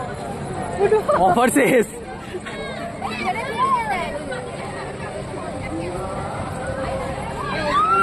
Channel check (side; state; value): both; identical; correlation 1.00